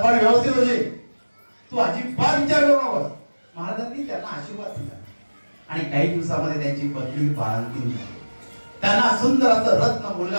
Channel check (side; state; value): both; inverted; correlation -1.00